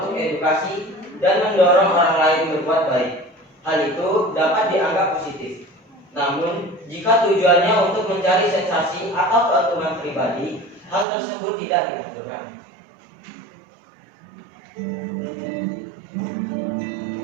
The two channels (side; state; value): left; drops out; at 11.1 s